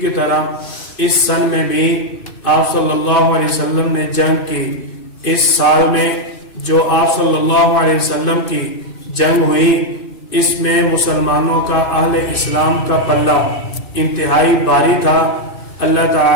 کی طرح اس سن میں بھی آپ صلی اللہ علیہ وسلم نے جنگ کی۔ اس سال میں جو آپ صلی اللہ علیہ وسلم کی جنگ ہوئی، اس میں مسلمانوں کا، اہل اسلام کا پلہ انتہائی بھاری تھا۔ اللہ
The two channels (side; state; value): right; late; 2.6 ms